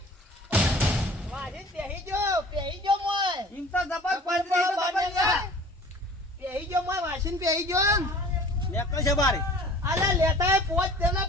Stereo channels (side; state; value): both; normal; correlation 0.46